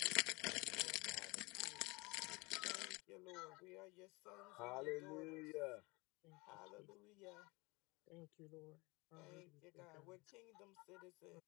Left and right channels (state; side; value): quieter; right; 25.2 dB